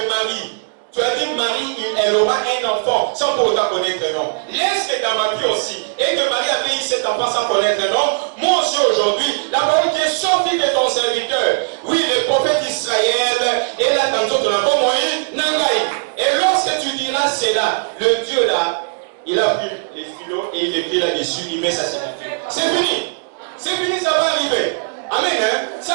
Marie. Tu as dit Marie, elle aura un enfant sans pour autant connaître un nom. Laisse que dans ma vie aussi, et que Marie avait eu cet enfant sans connaître un nom, moi aussi aujourd'hui, la parole qui est sortie de ton serviteur, oui, le prophète Israël, et là, tantôt, tu n'as pas moyen, Nangaï. Et lorsque tu diras cela, le Dieu là, il a pris les stylos et il écrit là-dessus, il met sa signature. C'est fini. C'est fini, ça va arriver. Amen. Hein?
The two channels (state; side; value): silent; left; digital silence